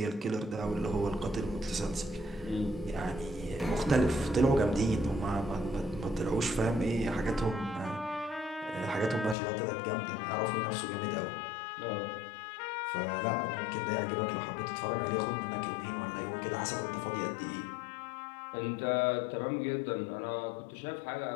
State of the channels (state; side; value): drops out; right; at 9.3 s